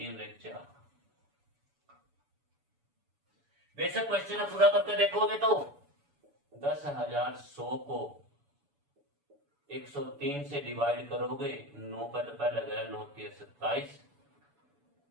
1 4। बेशक क्वेश्चन पूरा करके देखोगे तो 10,100 को 103 से डिवाइड करोगे, 9 का तो पहले गया, 9 3 27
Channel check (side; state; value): left; late; 7.1 ms